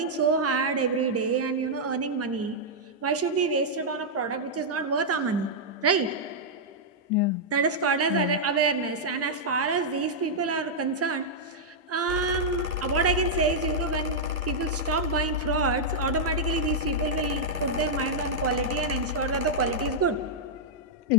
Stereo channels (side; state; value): both; normal; correlation -0.07